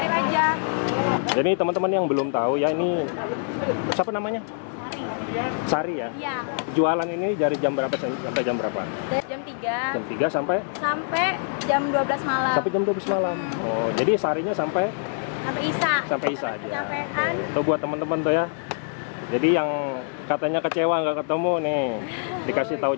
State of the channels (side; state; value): right; silent; digital silence